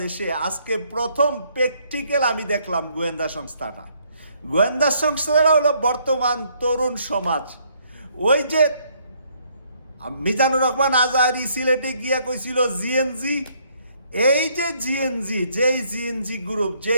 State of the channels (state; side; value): inverted; both; correlation -0.68